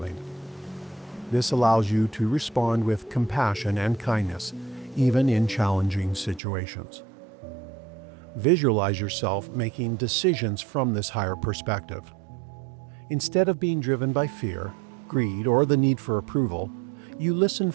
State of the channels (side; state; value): left; drops out; at 6.4 s